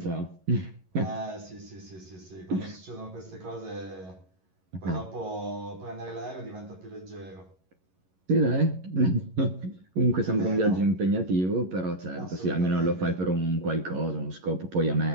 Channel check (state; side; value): late; left; 11 ms